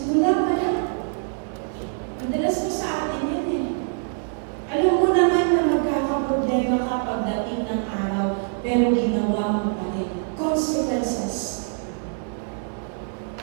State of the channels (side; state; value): left; silent; 55 dB below the other